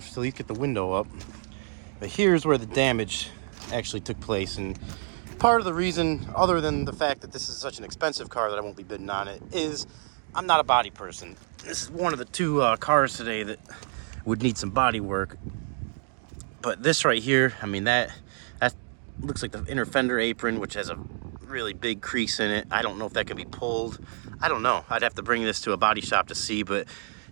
to at least get the window up. But here's where the damage actually took place. And part of the reason, other than the fact that this is such an expensive car that I won't be bidding on it, is I'm not a body person. This is one of the two cars today that would need some body work. But this right here, I mean, that looks like the inner fender apron, which has a really big crease in it. I don't know if that can be pulled. I don't know. I'd have to bring this to a body shop to see, but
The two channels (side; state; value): left; silent; digital silence